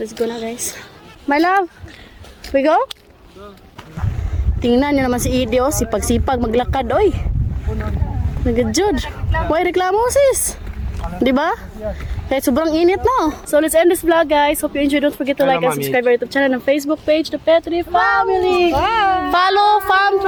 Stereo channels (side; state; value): both; identical; correlation 1.00